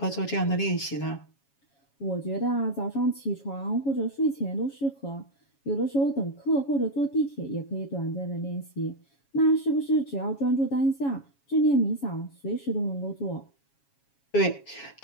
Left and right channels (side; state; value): right; late; 7.3 ms